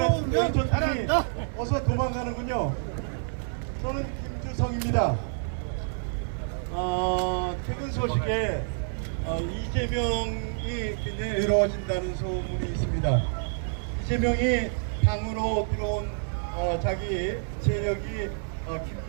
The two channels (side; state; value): left; silent; 56 dB below the other